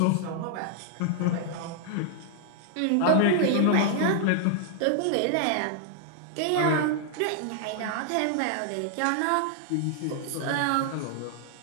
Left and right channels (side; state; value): both; different; correlation -0.01